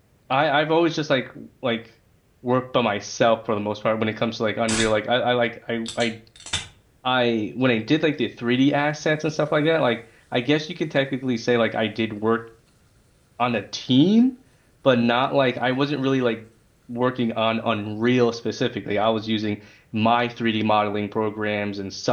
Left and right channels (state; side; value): identical; both; correlation 1.00